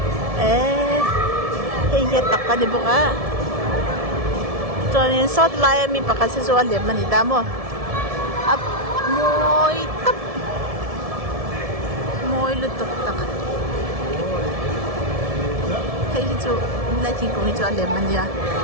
Kaya tak ka di buka. So, yung sot laya mi pa kasi so alim manita mo. Up, moy tap. Moy lutok tak. thấy chỗ lại thì cũng chỗ đẹp mình nha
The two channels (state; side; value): late; left; 1.7 ms